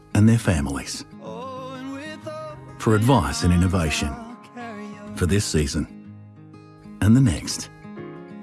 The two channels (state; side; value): identical; both; correlation 1.00